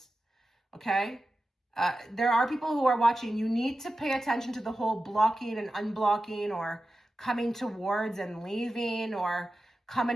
okay? There are people who are watching. You need to pay attention to the whole blocking and unblocking, or coming towards and leaving, or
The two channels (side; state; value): both; normal; correlation 0.93